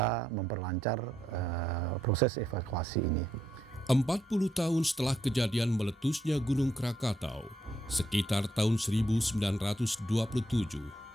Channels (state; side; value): normal; both; correlation 0.77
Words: memperlancar proses evakuasi ini. 40 tahun setelah kejadian meletusnya Gunung Krakatau, sekitar tahun 1927,